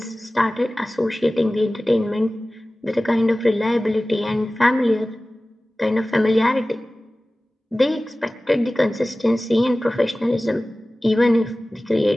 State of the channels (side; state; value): both; normal; correlation 0.97